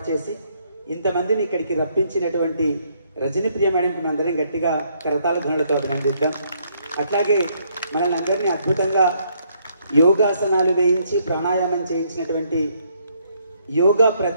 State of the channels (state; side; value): inverted; both; correlation -0.70